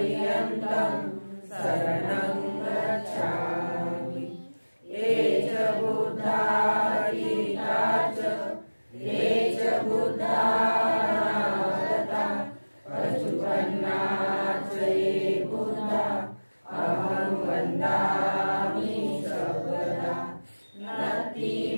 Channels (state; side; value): inverted; both; correlation -1.00